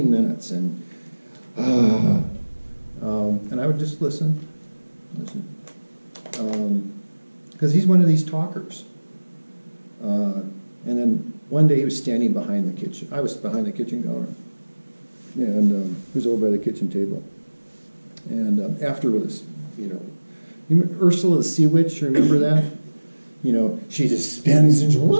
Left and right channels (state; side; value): inverted; both; correlation -1.00